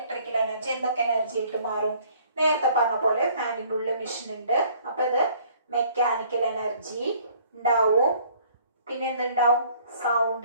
എനർജി എന്തൊക്കെ എനർജി ആയിട്ട് മാറും? നേരത്തെ പറഞ്ഞ പോലെ ഫാനിൻ്റെ ഉള്ളിൽ മെഷീൻ ഉണ്ട്. അപ്പൊ ഇത് മെക്കാനിക്കൽ എനർജി ഉണ്ടാവും. പിന്നെ എന്തുണ്ടാവും?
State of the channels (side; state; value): both; inverted; correlation -0.58